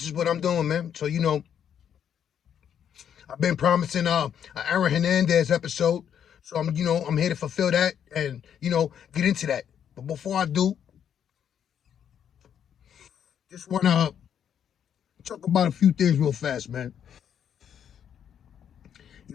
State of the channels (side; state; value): right; quieter; 8.8 dB